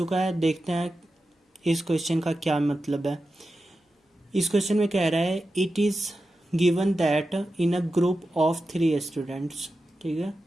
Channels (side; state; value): both; normal; correlation 0.91